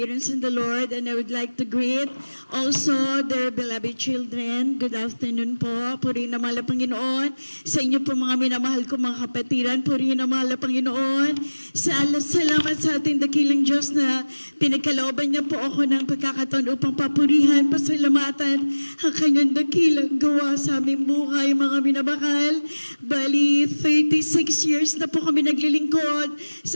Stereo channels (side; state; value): both; inverted; correlation -1.00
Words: in the Lord. And I would like to greet also their beloved children. Good afternoon po. Purihin ang mahal na Panginoon. Sa inyo po mga minamahal ko mga kapatiran, purihin ang mahal na Panginoon. Salamat sa ating dakilang Diyos na pinagkalooban niya po ako ng pagkakataon upang papurihan, pasalamatan ang kanyang dakilang gawa sa aming buhay, mga minamahal. Bali, 36 years na po kami naglilingkod